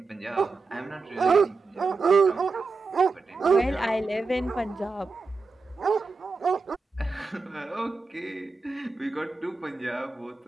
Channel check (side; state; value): left; quieter; 4.0 dB